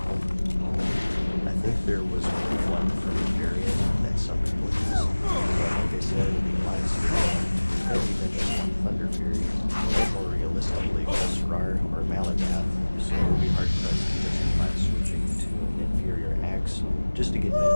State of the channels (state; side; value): inverted; both; correlation -1.00